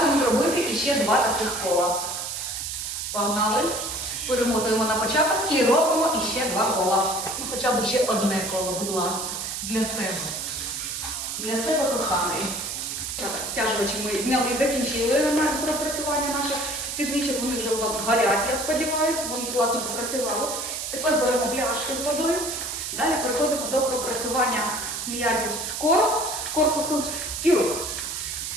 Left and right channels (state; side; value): noise; right; hiss, 4 dB below the sound